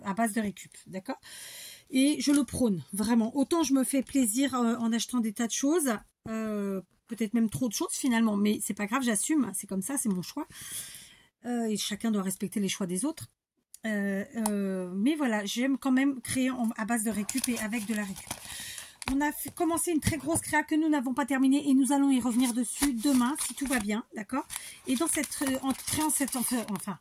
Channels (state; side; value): identical; both; correlation 1.00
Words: base de récup, d'accord? Et je le prône, vraiment. Autant je me fais plaisir en achetant des tas de choses, peut-être même trop de choses finalement, mais c'est pas grave, j'assume, c'est comme ça, c'est mon choix. Et chacun doit respecter les choix des autres. Mais voilà, j'aime quand même créer à base de récup et avec de la récup. On a commencé une très grosse créa que nous n'avons pas terminée et nous allons y revenir dessus demain si tout va bien, d'accord? Et dans cette,